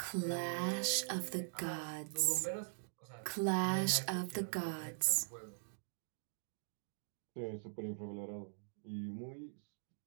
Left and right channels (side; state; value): left; silent; digital silence